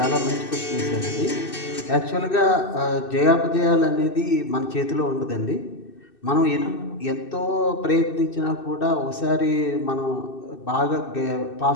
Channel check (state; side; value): late; right; 2.6 ms